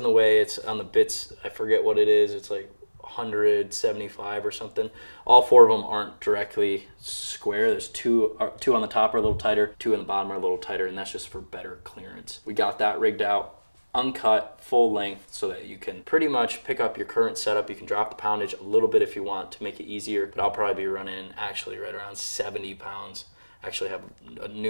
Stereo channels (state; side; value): inverted; both; correlation -1.00